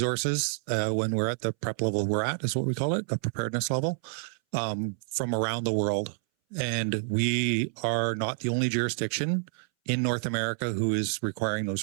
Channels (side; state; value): left; silent; 59 dB below the other